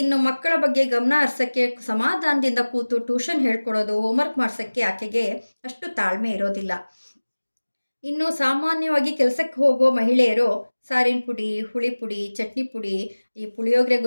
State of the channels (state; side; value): inverted; both; correlation -1.00